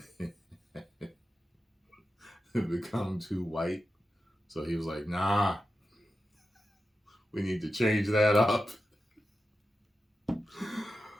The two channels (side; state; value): both; normal; correlation 0.91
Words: to become too white. So he was like, nah, we need to change that up.